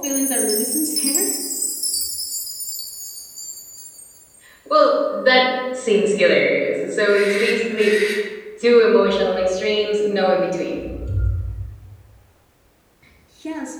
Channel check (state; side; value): identical; both; correlation 1.00